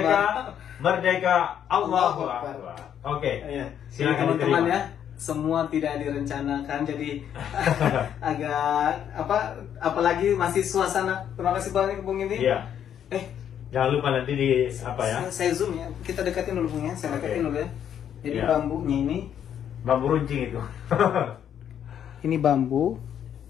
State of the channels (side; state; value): right; quieter; 9.4 dB